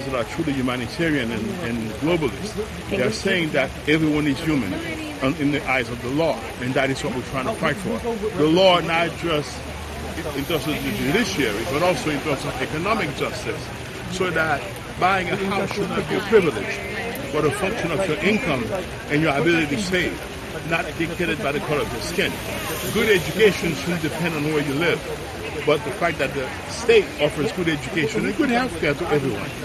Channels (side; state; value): both; identical; correlation 1.00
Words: that are truly humanitarian and globalist. They are saying that everyone is human in the eyes of the law, and that is what we're trying to fight for. The law, not just in terms of the judiciary, but also in terms of economic justice, so that buying a house should not be a privilege, but a function of your income and your ability to save, not dictated by the color of your skin. Good education shouldn't depend on where you live, but the fact that the state offers good education and good health care to everyone.